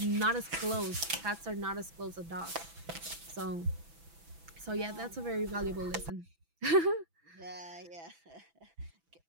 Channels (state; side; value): late; left; 6.0 ms